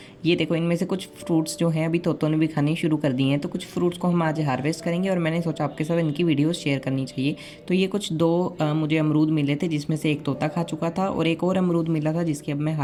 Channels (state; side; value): identical; both; correlation 1.00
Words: ये देखो, इनमें से कुछ फ्रूट्स जो हैं अभी तोतों ने भी खाने शुरू कर दिए हैं। तो कुछ फ्रूट्स को हम आज हार्वेस्ट करेंगे और मैंने सोचा आपके साथ इनकी वीडियो शेयर करनी चाहिए। तो ये कुछ मुझे अमरूद मिले थे, जिसमें से एक तोता खा चुका था और एक और अमरूद मिला था जिसकी अब मैं